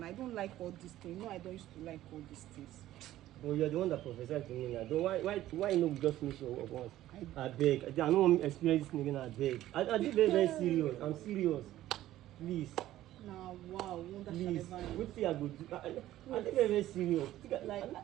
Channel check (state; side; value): quieter; left; 14.1 dB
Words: I don't like all these things. No, I don't used to like all these things. Well, you're the one that prophesied to me now. Why no just finish your work once? I beg. I don't want to experience this again. I beg. I did very serious. I'm serious. Please. Now, wow, please. What thing I go do? I did very serious. Like,